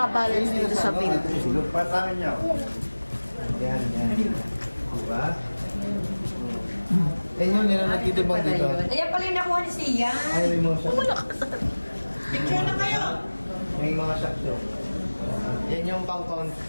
dito sa bed. Patangan niyo. Yan, yan. Diba? Yan yun, nila nagtitibang dito. Ayan pala yung nakuha ni Sia. Ay, may mga shock. Picture na kayo. May mga shock show. Yan yung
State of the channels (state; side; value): inverted; both; correlation -1.00